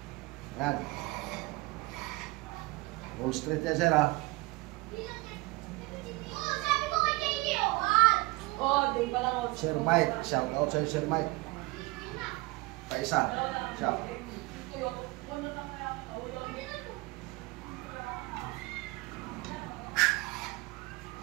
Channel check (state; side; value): quieter; left; 23.1 dB